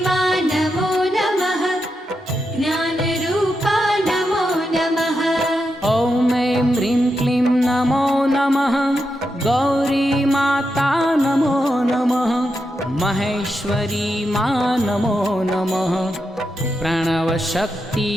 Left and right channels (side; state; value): both; normal; correlation 0.86